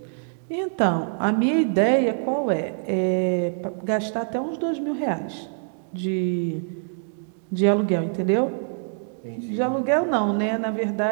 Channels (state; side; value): silent; left; digital silence